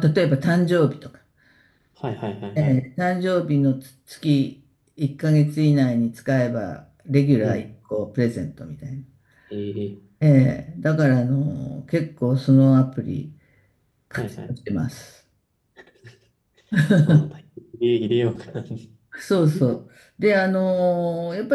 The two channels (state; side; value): identical; both; correlation 1.00